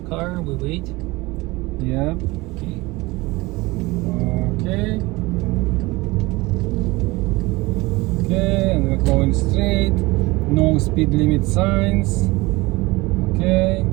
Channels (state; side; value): quieter; left; 21.9 dB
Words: car, we wait. Yep. Okay. Okay. Okay, and we're going straight. No speed limit signs. Okay.